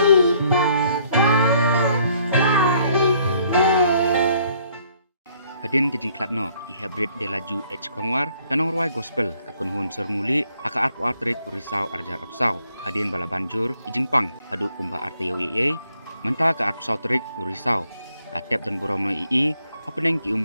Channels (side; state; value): both; inverted; correlation -0.65